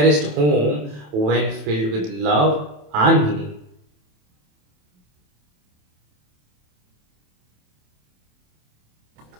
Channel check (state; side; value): late; left; 27 ms